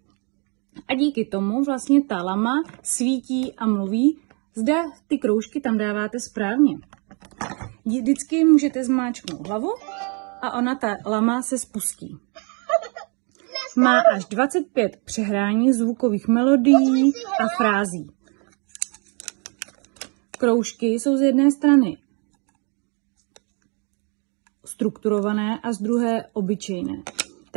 a díky tomu vlastně ta lama svítí a mluví, zda ty kroužky tam dáváte správně. Vždycky můžete zmáčknout hlavu a ta lama se spustí. Má až 25 přehrání zvukových melodií a frází. Kroužky jsou z jedné strany strukturované a z druhé obyčejné.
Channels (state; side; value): quieter; left; 35.8 dB